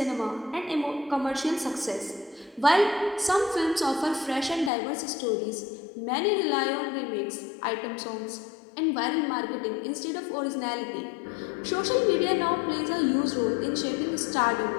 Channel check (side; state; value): right; drops out; at 4.7 s